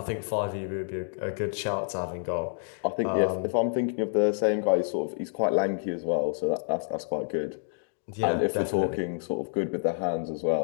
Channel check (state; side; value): silent; right; digital silence